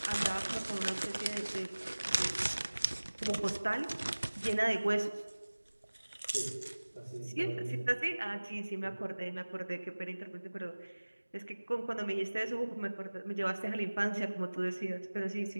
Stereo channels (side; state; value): both; inverted; correlation -1.00